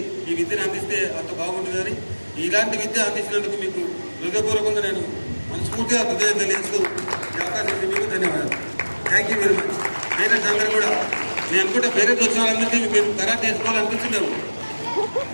ఈ విద్యను అందిస్తే అంత బాగుంటుందని, ఇలాంటి విద్య అందించినందుకు మీకు హృదయపూర్వకంగా నేను మనస్ఫూర్తిగా హృదయం తెలియజేస్తూ ఈ అవకాశం ఇచ్చి మీకు ధన్యవాదాలు. Thank you very much. Parents అందరూ కూడా, నేను అనుకుంటే పేరెంట్స్ వచ్చిన వాళ్ళందరినీ మీరు కరాటే నేర్చుకోవాలనిపించిందాము.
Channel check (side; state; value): both; inverted; correlation -1.00